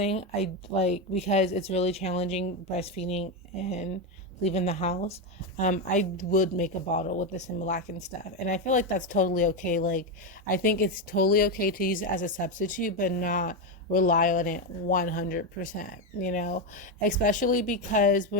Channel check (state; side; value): normal; both; correlation 0.09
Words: I like, because it's really challenging breastfeeding and leaving the house, I would make a bottle with the Similac and stuff. And I feel like that's totally okay. Like, I think it's totally okay to use it as a substitute, but not rely on it 100%, especially because